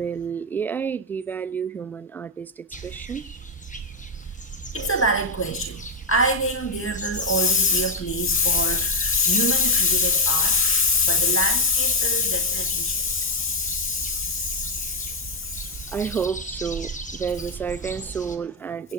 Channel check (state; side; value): normal; both; correlation 0.05